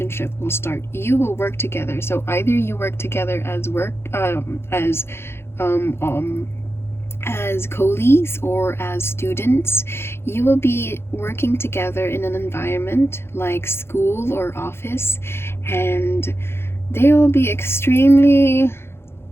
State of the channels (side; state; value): right; late; 0.12 ms